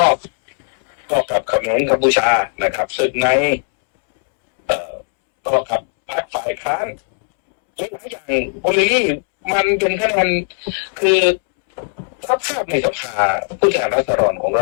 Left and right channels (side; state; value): right; silent; 68 dB below the other